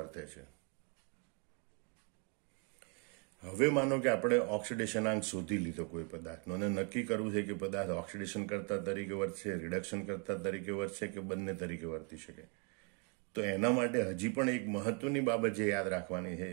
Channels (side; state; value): left; quieter; 36.3 dB